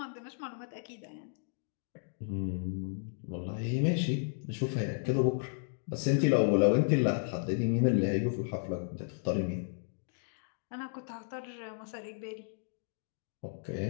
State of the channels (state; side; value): silent; right; digital silence